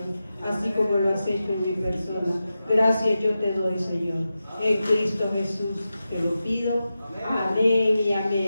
así como lo has hecho en mi persona. Gracias yo te doy, Señor. En Cristo Jesús te lo pido. Amén y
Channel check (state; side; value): inverted; both; correlation -0.92